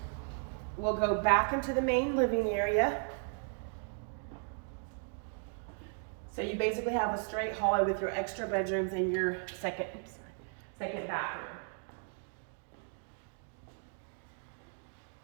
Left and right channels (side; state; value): left; silent; 54 dB below the other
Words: we'll go back into the main living area. So you basically have a straight hallway with your extra bedrooms and your second bathroom.